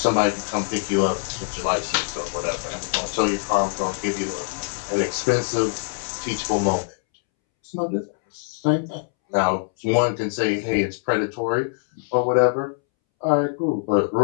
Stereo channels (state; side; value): silent; right; 63 dB below the other